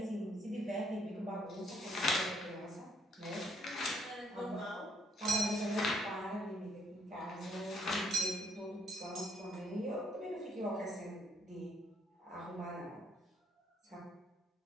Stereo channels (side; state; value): both; normal; correlation 0.68